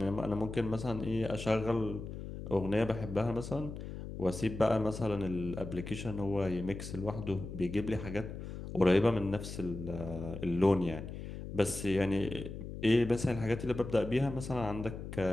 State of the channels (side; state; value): left; noise; hum, 9 dB below the sound